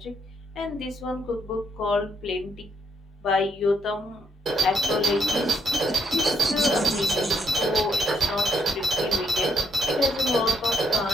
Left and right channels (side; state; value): both; normal; correlation 0.74